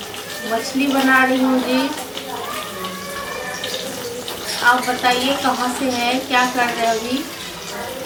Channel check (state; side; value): identical; both; correlation 1.00